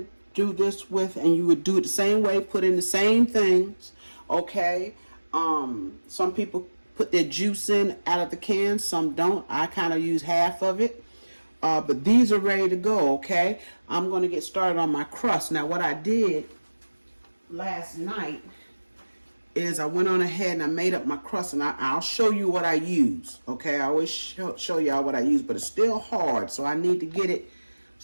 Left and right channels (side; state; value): both; inverted; correlation -1.00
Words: do this with, and you would do it the same way, put in the same things, okay? Some people put their juice in out of the can, some don't. I kind of use half of it. But these are ready to go, okay? I'm going to get started on my crust. Now, what I did last night is I went on ahead and I made up my crust, and I'll show you what I use, okay? I always show y'all what I use, but it's still hard, so I need to get it